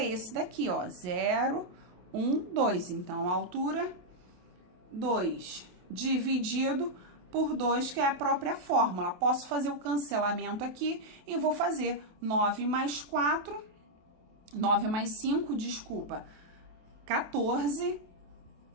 esse daqui, ó, 0, 1, 2. Então, a altura, 2. Dividido por 2, que é a própria fórmula. Posso fazer o cancelamento aqui e vou fazer 9 mais 4, 9 mais 5, desculpa, 14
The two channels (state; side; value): late; left; 28 ms